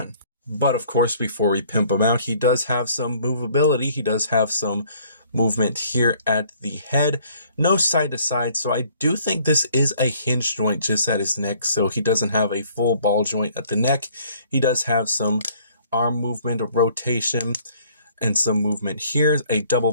But of course, before we pimp him out, he does have some movability. He does have some movement here at the head. No side to side, so I do think this is a hinge joint just at his neck, so he doesn't have a full ball joint at the neck. He does have some arm movement, a rotation, and some movement here, a double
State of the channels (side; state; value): both; inverted; correlation -0.59